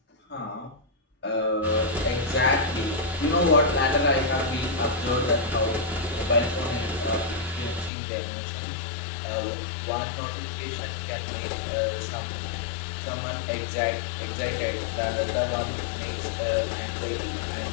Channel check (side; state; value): right; drops out; at 7.9 s